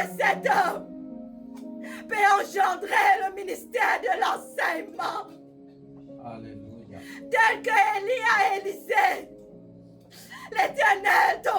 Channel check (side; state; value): both; identical; correlation 1.00